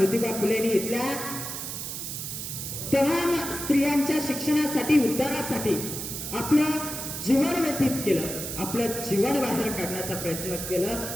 फुलेंनी इथल्या तमाम स्त्रियांच्या शिक्षणासाठी, उद्धारासाठी आपलं जीवन व्यतीत केलं, आपलं जीवन बाहेर काढण्याचा प्रयत्न केलं.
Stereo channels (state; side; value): noise; right; hiss, 6 dB below the sound